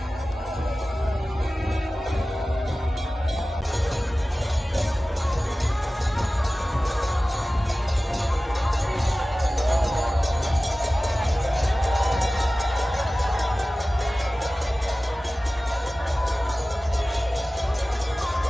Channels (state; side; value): normal; both; correlation 0.96